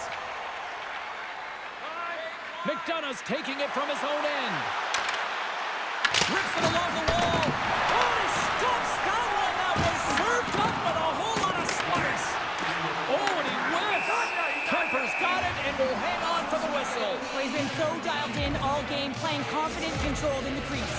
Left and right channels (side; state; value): both; identical; correlation 1.00